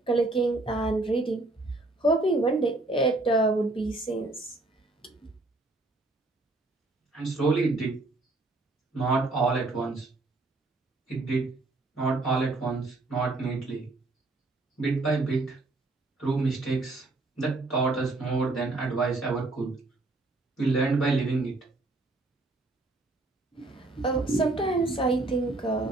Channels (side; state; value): left; quieter; 3.0 dB